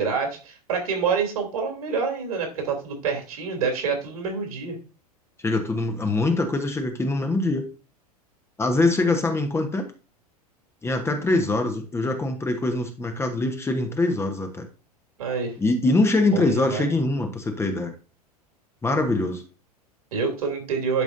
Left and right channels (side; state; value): both; normal; correlation 0.56